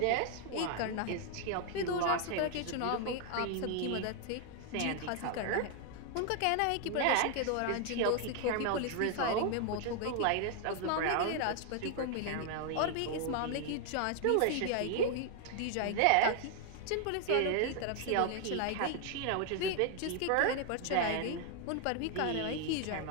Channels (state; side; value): different; both; correlation 0.00